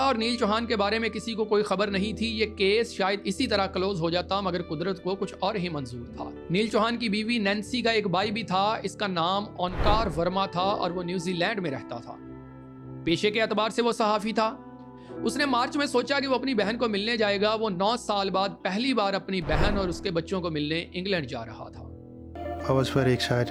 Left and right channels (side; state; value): both; identical; correlation 1.00